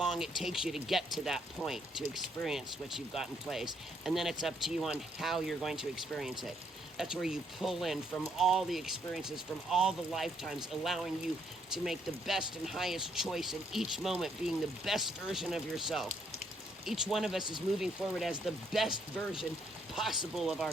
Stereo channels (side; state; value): both; normal; correlation 0.71